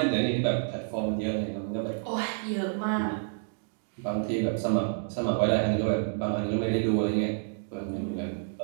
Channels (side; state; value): left; silent; digital silence